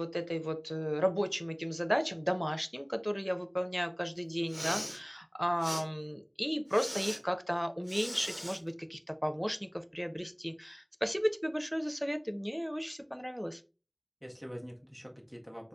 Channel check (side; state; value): both; identical; correlation 1.00